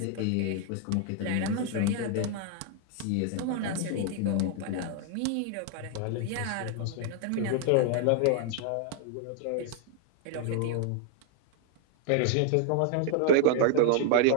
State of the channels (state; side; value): different; both; correlation 0.00